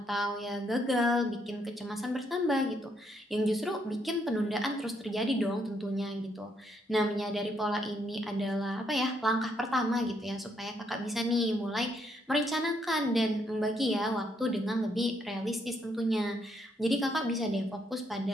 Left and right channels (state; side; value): normal; both; correlation 0.74